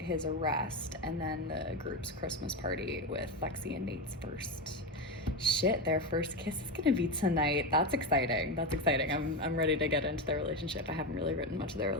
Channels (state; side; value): normal; both; correlation 0.15